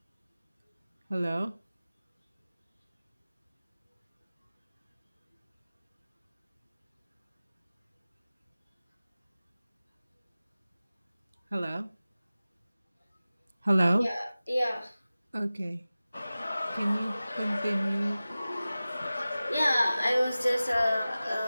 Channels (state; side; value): inverted; both; correlation -0.96